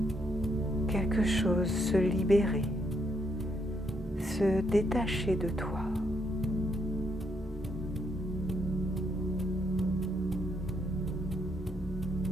quelque chose se libérer, se détacher de toi.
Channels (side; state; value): both; normal; correlation 0.75